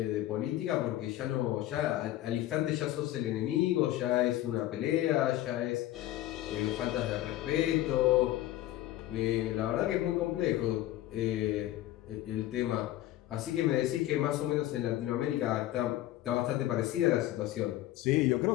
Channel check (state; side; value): quieter; right; 14.7 dB